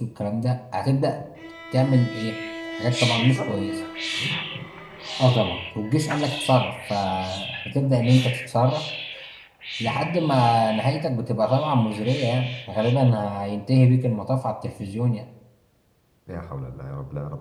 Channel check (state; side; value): identical; both; correlation 1.00